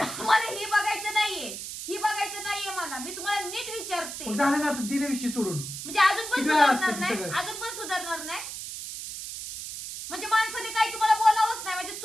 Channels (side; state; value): right; noise; hiss, 8 dB below the sound